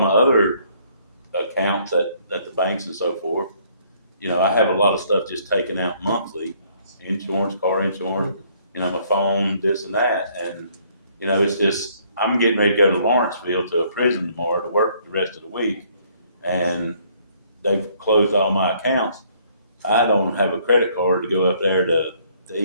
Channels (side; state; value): both; inverted; correlation -0.64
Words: other accounts at the banks and so forth, I have a lot of stuff just taken out monthly, insurance, car insurance, my phone, this and that. And, it's just, I'm getting ready to go to Lawrenceville to a prison tomorrow to work the rest of the week. And they've closed all my accounts. I don't have a credit card to go up there to